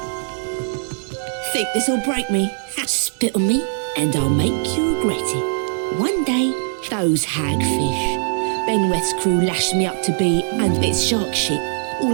Think this'll break me? Spit on me, and I'll make you regret it. One day, those hagfish. Benweth's crew lashed me up to be and bits shark shit.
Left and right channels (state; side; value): silent; left; digital silence